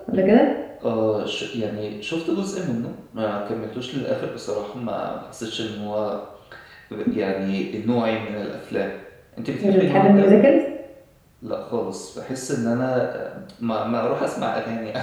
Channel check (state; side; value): identical; both; correlation 1.00